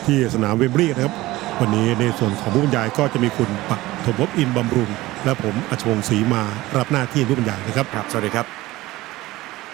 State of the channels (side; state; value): left; quieter; 18.3 dB